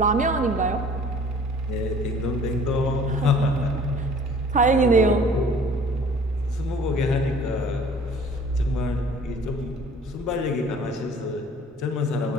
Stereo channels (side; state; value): both; normal; correlation 0.51